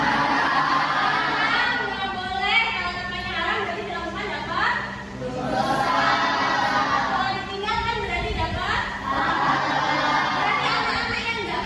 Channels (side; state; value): both; identical; correlation 1.00